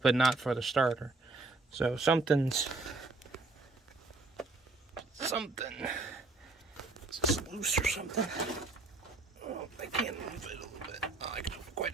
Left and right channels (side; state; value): left; quieter; 3.4 dB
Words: not for the starter. So something's just loose or something. Oh, I can't move it a little bit. Oh, I can move